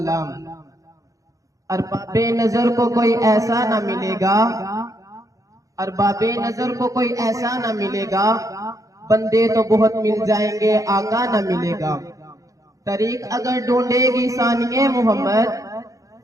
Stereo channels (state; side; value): late; left; 0.16 ms